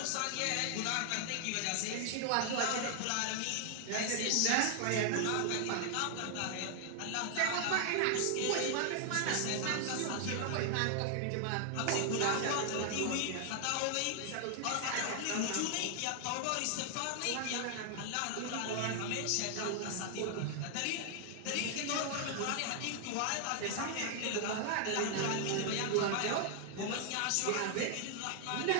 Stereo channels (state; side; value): different; both; correlation 0.00